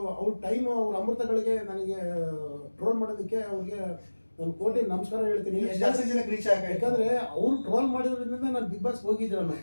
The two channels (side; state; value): both; inverted; correlation -1.00